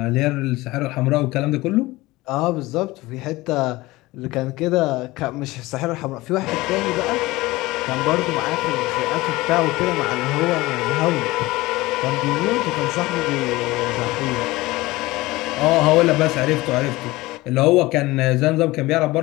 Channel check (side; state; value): right; quieter; 19.9 dB